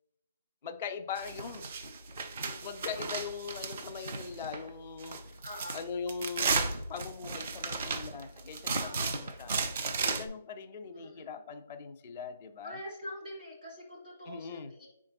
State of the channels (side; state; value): both; inverted; correlation -0.59